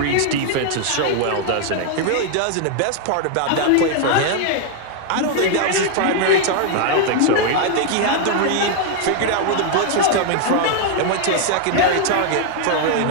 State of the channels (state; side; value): different; both; correlation 0.00